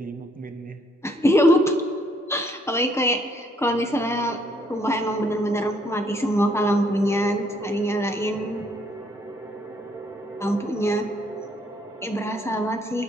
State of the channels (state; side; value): normal; both; correlation 0.68